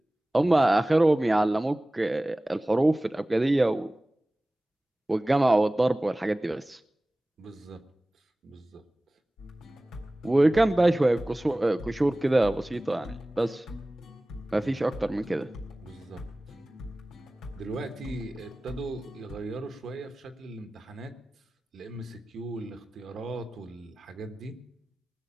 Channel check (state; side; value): normal; both; correlation 0.98